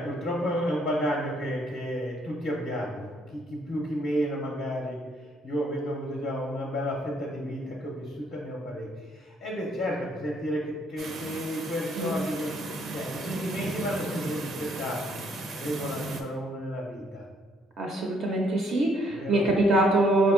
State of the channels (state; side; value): normal; both; correlation 0.68